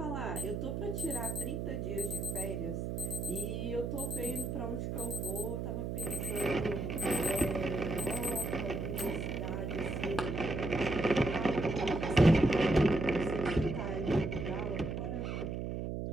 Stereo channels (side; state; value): right; noise; hum, 3 dB below the sound